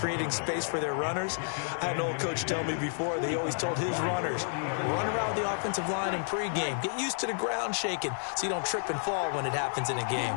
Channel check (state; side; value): silent; right; digital silence